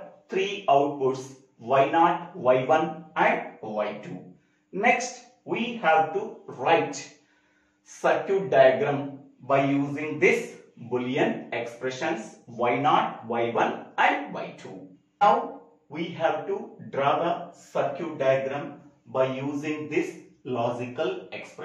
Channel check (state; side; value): identical; both; correlation 1.00